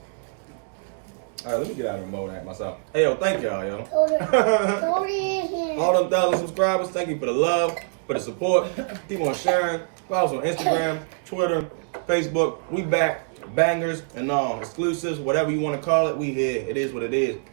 All right, let me get out of the mode at myself. Hey, yo, thank y'all, yo. All them 1,000 subscribers, thank you for the love, for the support. Keep on sharing. Follow us on Instagram, Twitter, Facebook. We back. Bangers and all. Exclusives, whatever you want to call it, we here. It is what it is.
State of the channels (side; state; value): left; silent; digital silence